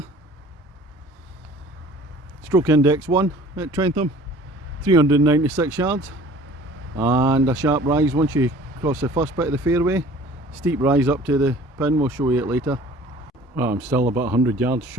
Stroke index 1 at Trentham, 396 yards, and a sharp rise once you cross the first bit of the fairway. Steep rise up to the pin, we'll show you it later. Well, I'm still about 100 yards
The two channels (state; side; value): normal; both; correlation 0.49